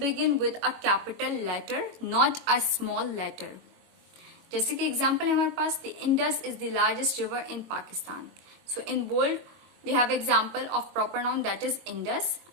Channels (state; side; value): late; left; 22 ms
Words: with a capital letter, not a small letter. जैसे कि एग्जाम्पल है हमारे पास, the Indus is the largest river in Pakistan. So in bold we have example of proper noun that is Indus,